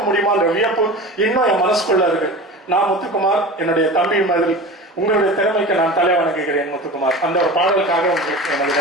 முடியுமான்ற வியப்பு இன்னும் என் மனசுக்குள்ள இருக்கு. நான் முத்துக்குமார், என்னுடைய தம்பி மாதிரி உங்களுடைய திறமைக்கு நான் தலை வணங்குகிறேன் முத்துக்குமார். அந்த ஒரு பாடலுக்காக உங்களுக்கு எனது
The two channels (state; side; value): normal; both; correlation 0.33